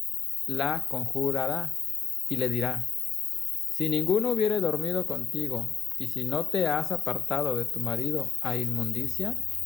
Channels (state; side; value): quieter; right; 7.0 dB